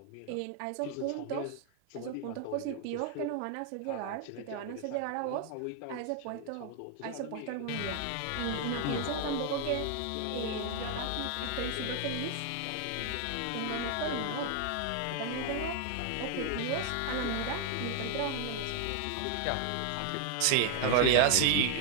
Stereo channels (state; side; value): different; both; correlation 0.00